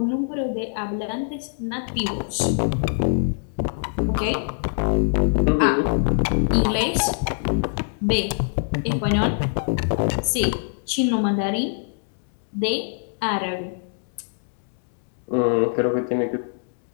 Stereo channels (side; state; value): right; silent; digital silence